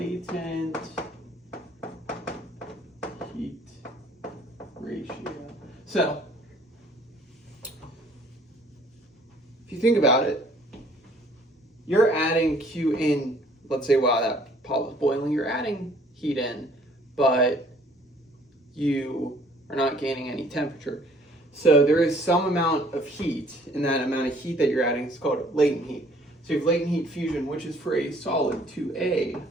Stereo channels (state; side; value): normal; both; correlation 0.58